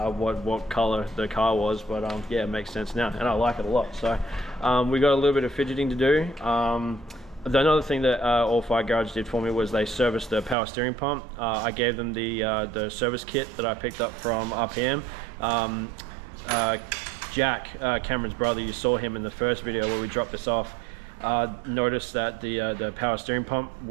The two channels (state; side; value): drops out; left; at 10.6 s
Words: color the car was, but yeah, it makes sense now, and I like it a lot. So we got a little bit of fidgeting to do. Another thing that All Fire Garage did for me was they serviced the power steering pump. I gave them the service kit that I picked up from RPM. Jack, Cameron's brother, you saw him in the first video where we dropped this off. Noticed that the power steering pump